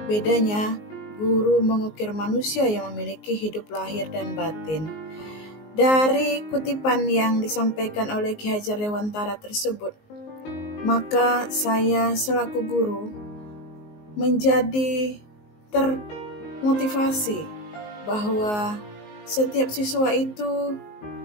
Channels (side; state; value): right; late; 19 ms